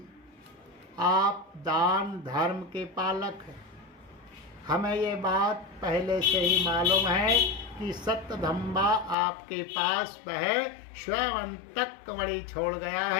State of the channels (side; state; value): right; drops out; at 9.2 s